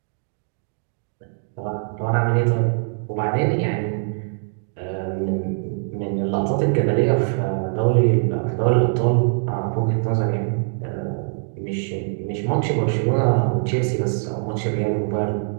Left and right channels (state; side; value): silent; left; digital silence